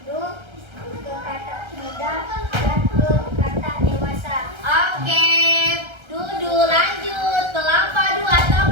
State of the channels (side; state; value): left; late; 1.3 ms